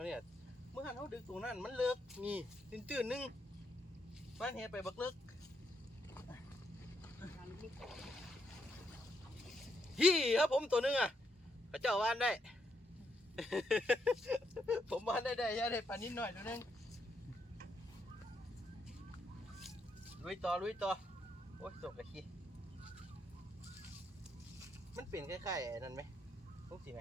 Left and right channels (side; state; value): both; normal; correlation 0.77